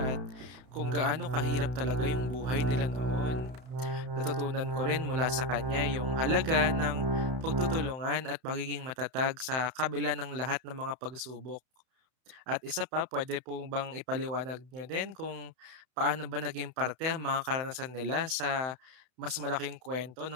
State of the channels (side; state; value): left; late; 32 ms